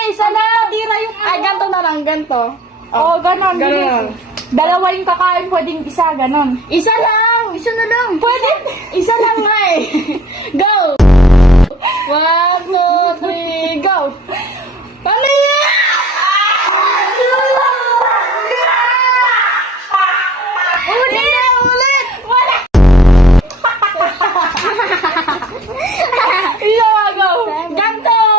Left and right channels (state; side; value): normal; both; correlation 0.48